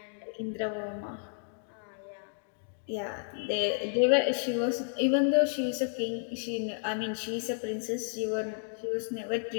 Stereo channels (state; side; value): silent; right; digital silence